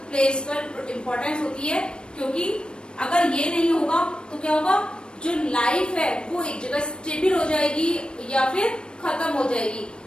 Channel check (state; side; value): late; right; 0.053 ms